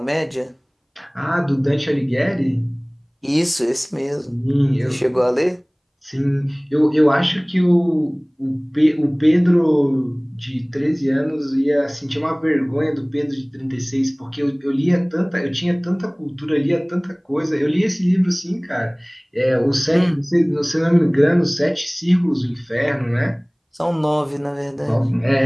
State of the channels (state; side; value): identical; both; correlation 1.00